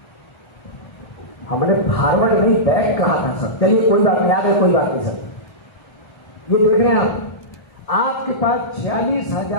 हमने फॉरवर्ड नहीं बैक कहा था सर। चलिए कोई बात नहीं, आगे कोई बात नहीं सर। ये देख रहे हैं आपके पास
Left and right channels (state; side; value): late; right; 1.3 ms